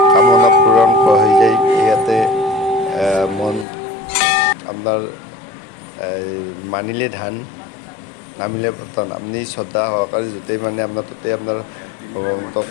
কামনা পূৰণ হৈ যায়। ইয়াতে মন আপোনাৰ মানিলে ধান, নামিলে পতন। আপুনি শ্ৰদ্ধা সহকাৰে য'তেই মানে আপোনাৰ ত'তেই আপোনাৰ ভগৱন্তক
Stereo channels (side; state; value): right; drops out; at 3.7 s